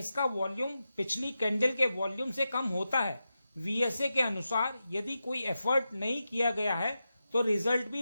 वॉल्यूम पिछली कैंडल के वॉल्यूम से कम होता है। वीएसए के अनुसार यदि कोई एफर्ट नहीं किया गया है तो रिजल्ट भी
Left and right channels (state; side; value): inverted; both; correlation -0.90